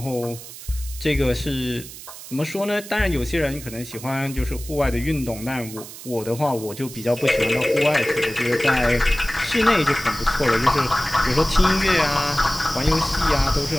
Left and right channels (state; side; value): noise; right; hiss, 14 dB below the sound